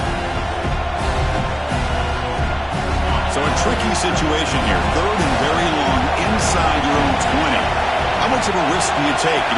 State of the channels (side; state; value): both; identical; correlation 1.00